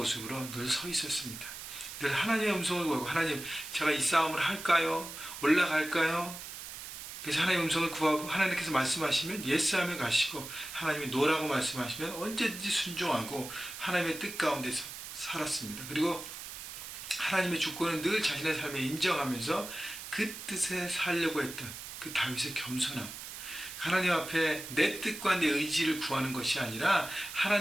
늘 서 있었습니다. 늘 하나님의 음성을 구하고 하나님 제가 이 싸움을 할까요? 올라갈까요? 그래서 하나님의 음성을 구하고 하나님께서 말씀하시면 예스하며 가시고 하나님이 노라고 말씀하시면 언제든지 순종하고 하나님의 뜻 가운데서 살았습니다. 그리고 하나님의 주권은 늘 자신의 삶에 인정하면서 그 뜻에 살려고 했던 그 다윗의 겸손함, 하나님 앞에 내 뜻과 내 의지를 구하는 것이 아니라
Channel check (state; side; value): noise; right; hiss, 10 dB below the sound